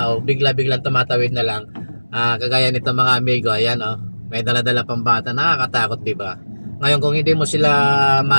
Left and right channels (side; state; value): both; inverted; correlation -1.00